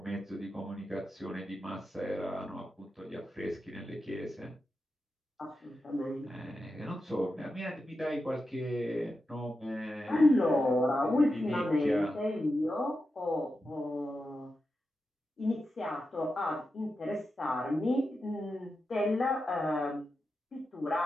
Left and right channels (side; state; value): both; normal; correlation 0.89